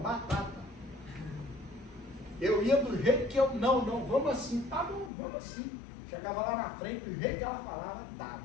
Eu ia do jeito que eu... Não, vamos assim. Tá bom, vamos assim. Chegava lá na frente, do jeito que ela falava, estava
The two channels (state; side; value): drops out; right; at 5.1 s